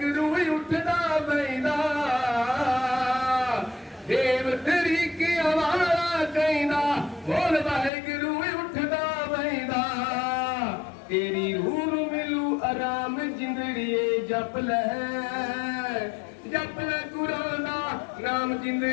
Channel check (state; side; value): drops out; right; at 7.9 s